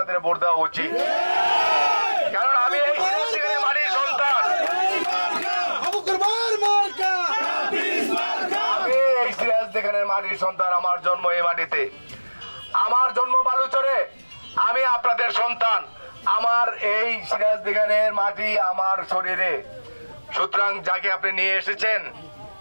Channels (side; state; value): both; inverted; correlation -1.00